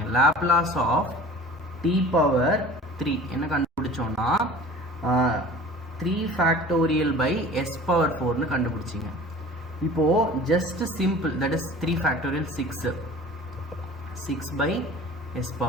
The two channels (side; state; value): both; normal; correlation 0.43